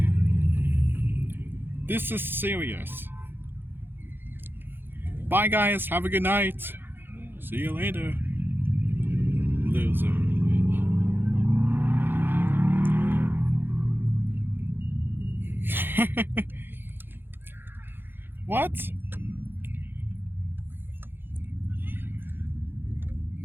This is serious. Bye, guys. Have a good night. See you later. Loser. What?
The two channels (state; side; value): late; left; 0.10 ms